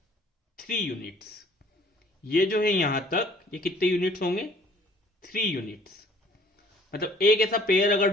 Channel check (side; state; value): both; normal; correlation 0.56